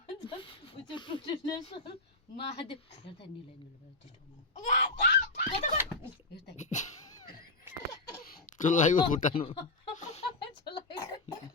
महादेव हेर्दा निलै भयो टिस्टोमा चुल्लाको खुट्टानु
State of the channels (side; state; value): right; quieter; 3.1 dB